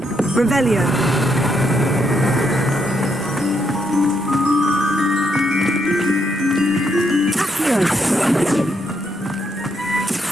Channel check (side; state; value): both; normal; correlation 0.77